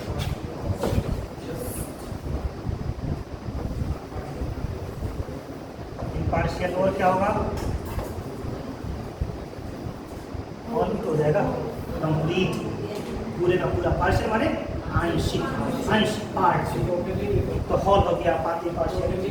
इम्पार्शियल, और क्या होगा? और भी तो हो जाएगा कंप्लीट, पूरे का पूरा। पार्शियल माने आंशिक, अंश, पार्ट, तो हॉल हो गया, पार्टी पार्शियल,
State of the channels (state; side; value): identical; both; correlation 1.00